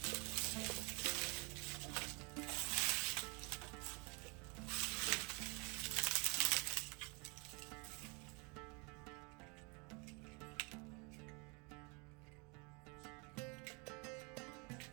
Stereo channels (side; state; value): left; quieter; 31.1 dB